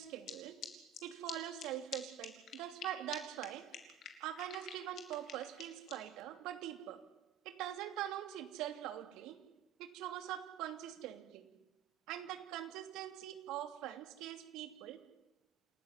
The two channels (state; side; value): quieter; left; 8.4 dB